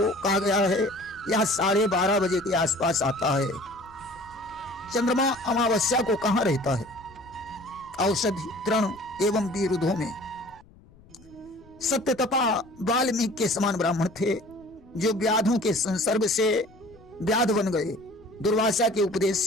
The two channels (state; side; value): noise; left; rumble, 26 dB below the sound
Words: कहा गया है, यह 12:30 बजे के आसपास आता है। चंद्रमा अमावस्या को कहां रहता है? औषधि, तृण एवं विरुद्धों में। सत्यतपा वाल्मीकि के समान ब्राह्मण थे जो व्याधों के संसर्ग से व्याध बन गए, दुर्वासा के उपदेश